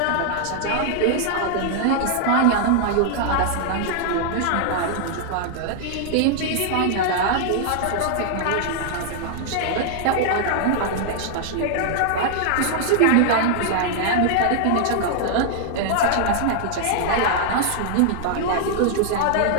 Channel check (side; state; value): both; different; correlation -0.01